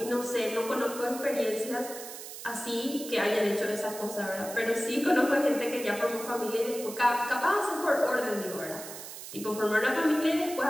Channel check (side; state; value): right; noise; hiss, 11 dB below the sound